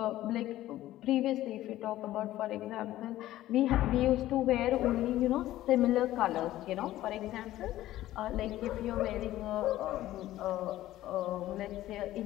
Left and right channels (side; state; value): right; quieter; 14.7 dB